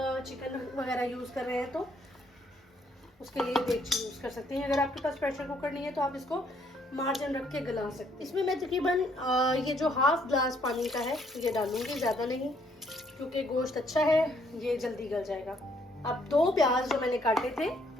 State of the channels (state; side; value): normal; both; correlation 0.68